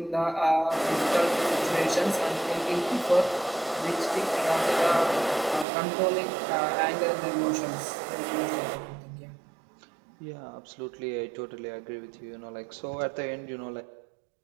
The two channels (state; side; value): drops out; left; at 5.7 s